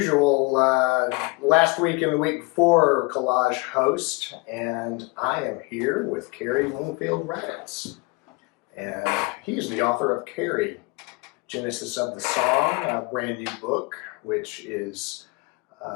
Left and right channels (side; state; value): right; quieter; 27.6 dB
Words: last week and the week before Collage host, and I am here with Cary Raditz. And he's the author of Cary, Genesis of the Song, a brand new book, which is